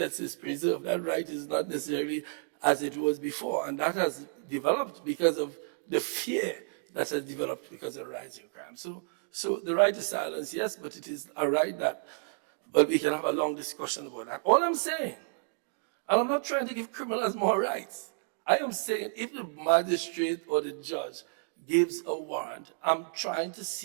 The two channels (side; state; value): left; silent; digital silence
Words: is preserved, that right is not necessarily as it was before. And that has developed because of the fear that has developed because of rising crime. So the right to silence, yes, but it is a right that, but we can have a long discussion about that. All I'm saying, and I'm not trying to give criminals more rights. I am saying if the magistrate or the judge gives a warrant, I'm trying to